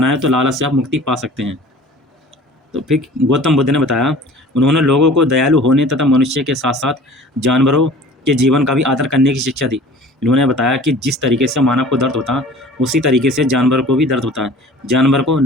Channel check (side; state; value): both; normal; correlation 0.45